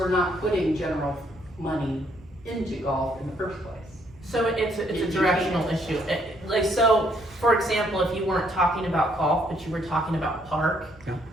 not putting general money into golf in the first place. So it's a directional issue. Like, so, for example, if you weren't talking about golf, but you were talking about park, Yeah.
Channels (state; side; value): noise; right; rumble, 23 dB below the sound